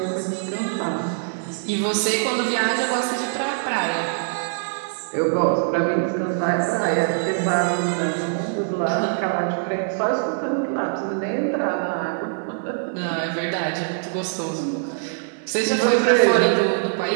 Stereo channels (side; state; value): left; silent; digital silence